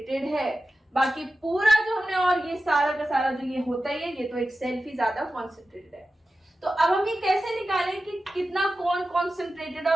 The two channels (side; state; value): both; normal; correlation 0.93